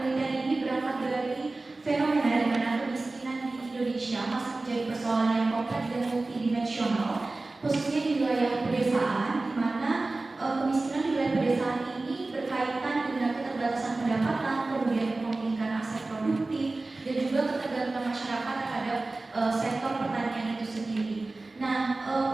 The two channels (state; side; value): quieter; left; 3.2 dB